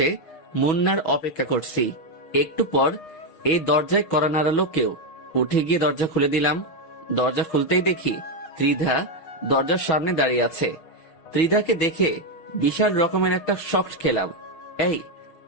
মুন্নার অপেক্ষা করছি। একটু পর এই দরজায় কড়া নাড়ালো কেউ। উঠে গিয়ে দরজা খুলে দিলাম। দরজা খুলতেই দেখি ত্রিধা দরজার সামনে দাঁড়িয়ে আছে। ত্রিধাকে দেখে বিশাল রকমের একটা শক খেলাম। এই,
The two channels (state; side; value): late; right; 6.6 ms